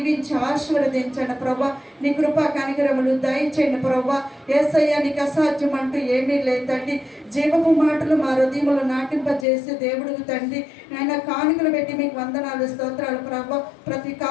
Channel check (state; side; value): drops out; right; at 9.5 s